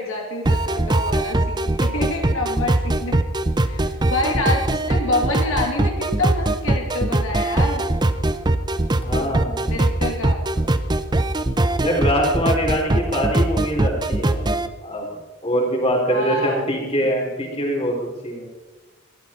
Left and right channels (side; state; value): both; normal; correlation 0.58